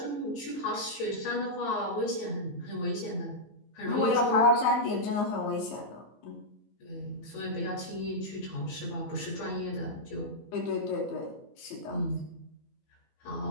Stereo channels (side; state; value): right; late; 15 ms